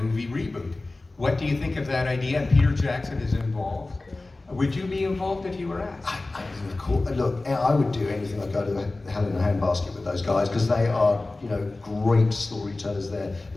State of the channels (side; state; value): right; quieter; 3.1 dB